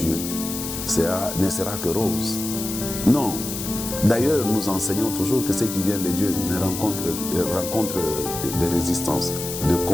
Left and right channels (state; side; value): noise; left; hiss, 6 dB below the sound